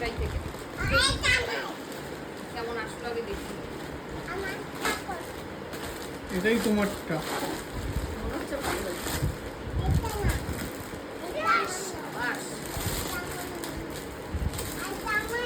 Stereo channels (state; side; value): identical; both; correlation 1.00